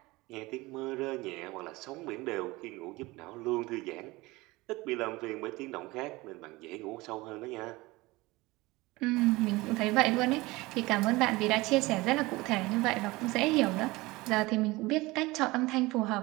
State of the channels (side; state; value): left; quieter; 21.4 dB